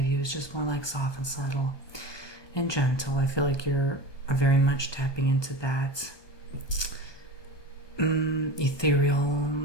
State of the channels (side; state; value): right; late; 1.2 ms